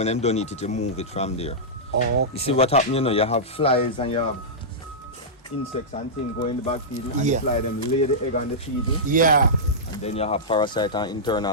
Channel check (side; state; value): both; normal; correlation -0.13